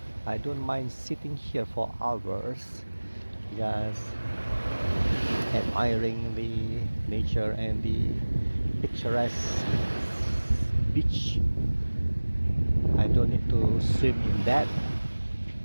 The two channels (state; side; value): inverted; both; correlation -1.00